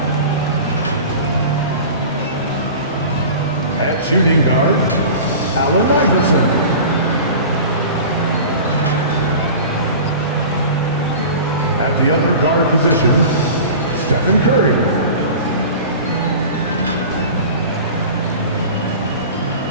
At shooting guard, Allen Iverson. At the other guard position, Stephen Curry.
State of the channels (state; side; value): inverted; both; correlation -0.37